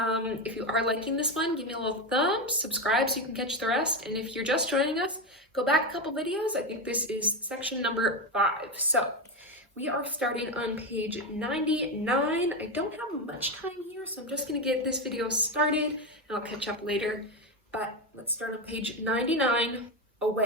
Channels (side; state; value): both; normal; correlation 0.13